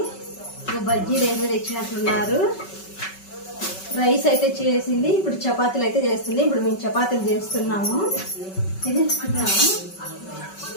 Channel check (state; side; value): late; right; 5.3 ms